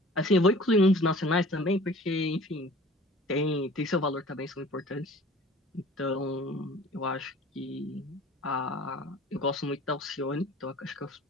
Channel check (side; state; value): both; normal; correlation 0.46